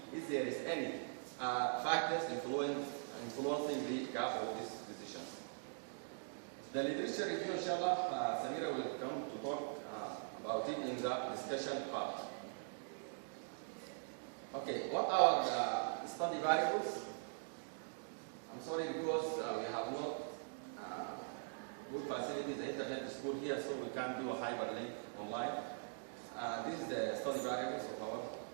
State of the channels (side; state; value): left; silent; digital silence